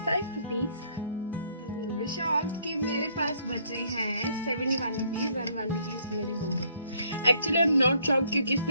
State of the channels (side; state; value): both; inverted; correlation -0.65